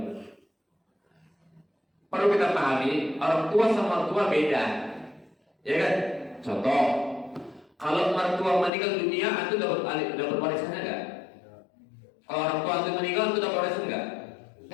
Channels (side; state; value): right; drops out; at 8.7 s